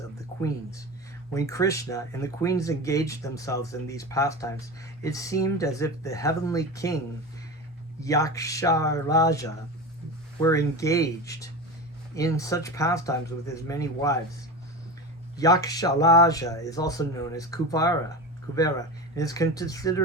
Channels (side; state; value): both; normal; correlation 0.26